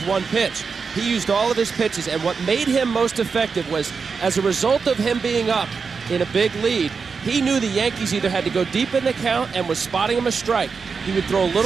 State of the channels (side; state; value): left; quieter; 5.3 dB